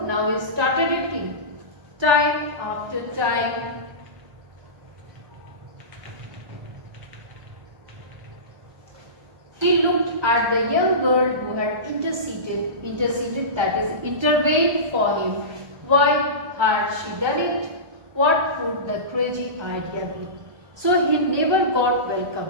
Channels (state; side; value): late; left; 1.3 ms